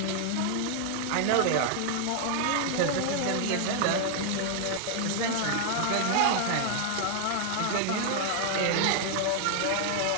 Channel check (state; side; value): different; both; correlation 0.00